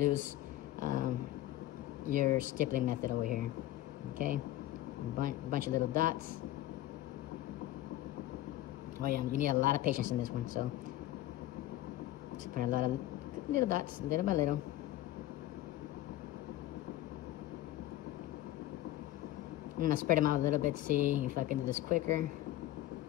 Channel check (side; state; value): right; quieter; 14.7 dB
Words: your stippling method over here. Okay, bunch of little dots. Oh yeah, you need a lot of patience in this one. So just put a lot of little dots, little by little. I'm gonna spread them out a little bit, see if I can do this quicker.